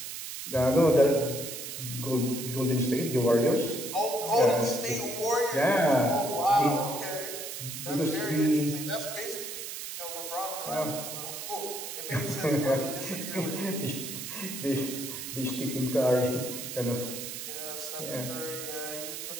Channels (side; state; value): right; noise; hiss, 7 dB below the sound